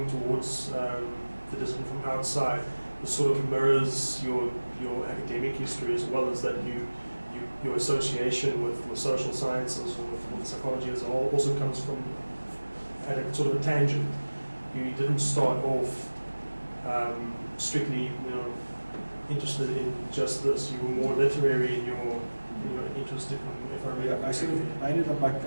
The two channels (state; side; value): inverted; both; correlation -1.00